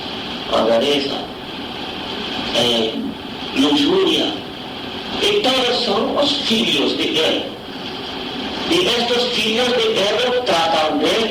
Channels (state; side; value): identical; both; correlation 1.00